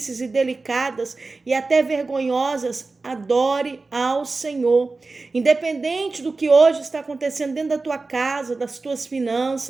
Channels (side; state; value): left; quieter; 3.7 dB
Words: e delicadas e até vergonhosas, adore ao Senhor. Independente do que hoje está acontecendo dentro da tua casa, das tuas